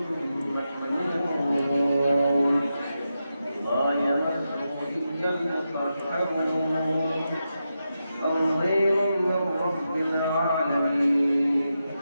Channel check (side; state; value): both; inverted; correlation -0.88